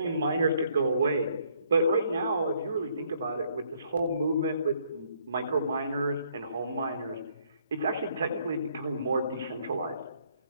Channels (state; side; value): inverted; both; correlation -0.67